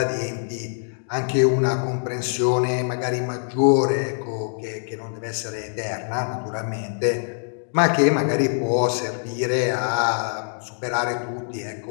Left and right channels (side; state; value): right; silent; digital silence